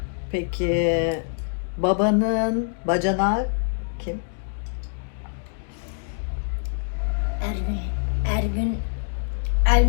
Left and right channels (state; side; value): silent; right; digital silence